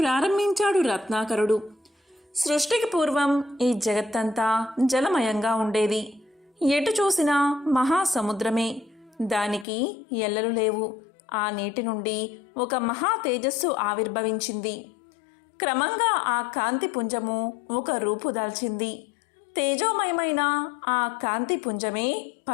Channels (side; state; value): right; drops out; at 9.7 s